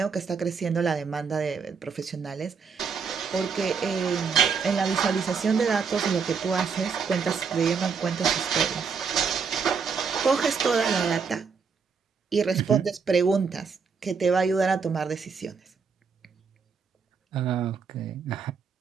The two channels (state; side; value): quieter; left; 5.7 dB